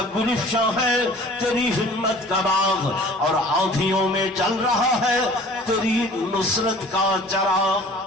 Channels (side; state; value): both; normal; correlation 0.47